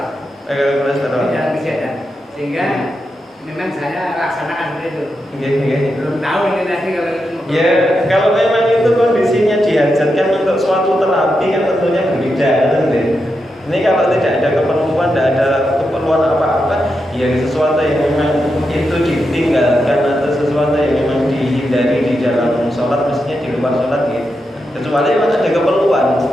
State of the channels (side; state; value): both; normal; correlation 0.86